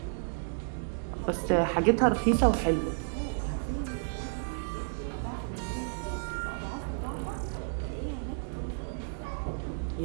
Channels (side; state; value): left; silent; digital silence